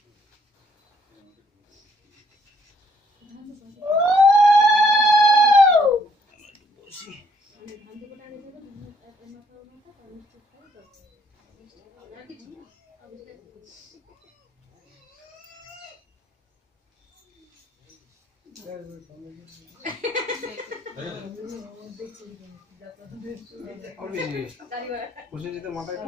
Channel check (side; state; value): both; normal; correlation 0.67